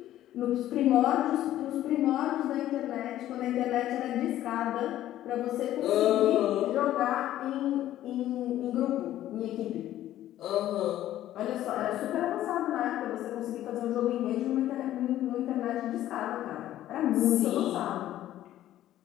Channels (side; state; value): right; quieter; 13.2 dB